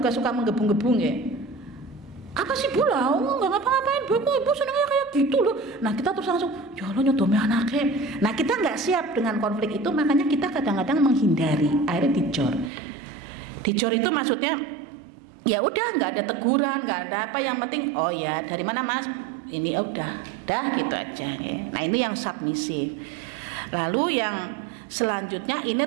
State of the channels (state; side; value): drops out; left; at 12.7 s